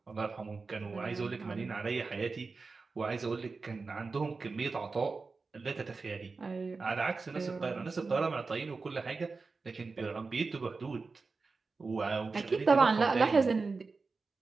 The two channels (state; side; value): quieter; left; 4.2 dB